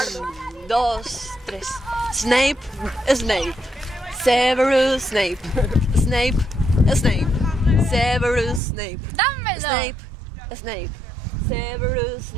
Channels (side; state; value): left; drops out; at 8.6 s